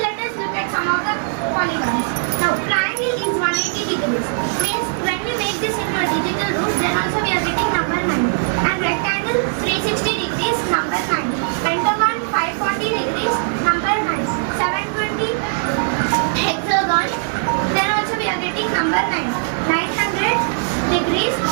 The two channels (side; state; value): left; silent; 66 dB below the other